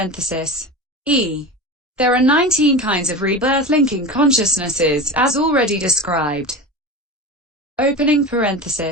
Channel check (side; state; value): both; normal; correlation 0.27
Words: E. There are 19 kinds of rebirth linking consciousnesses, as already described. Opening